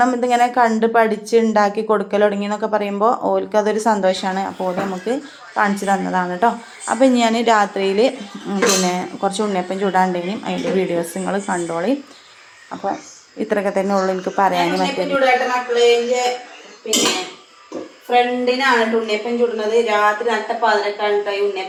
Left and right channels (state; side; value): identical; both; correlation 1.00